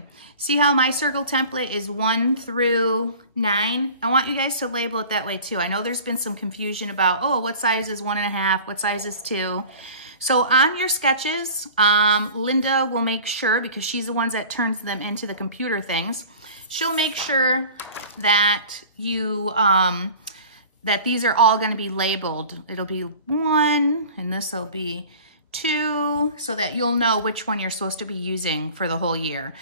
See how my circle template is 1 through 9? I want you guys to label it that way too. I know there's been some confusion about, oh, what size is 1.5? What size is 2? So on your sketches, Linda will make sure, because she's the one that turns them into the computer things, she'll make sure that you, that these are all gonna be labeled. It'll be 1, and this will be 2, so that you'll know which one you're supposed to be using for the whole year.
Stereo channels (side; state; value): both; inverted; correlation -0.41